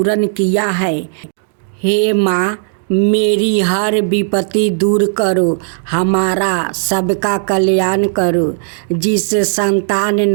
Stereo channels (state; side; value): silent; left; 63 dB below the other